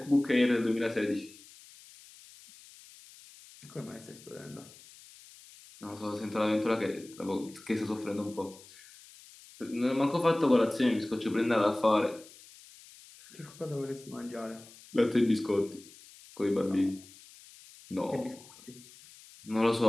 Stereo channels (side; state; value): left; noise; hiss, 22 dB below the sound